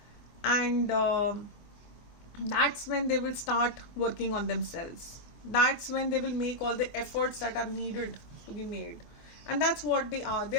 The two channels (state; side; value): late; right; 24 ms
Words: And that's when they will start working on themselves. That's when they will make all the efforts that are needed to be made. And that's what they are. They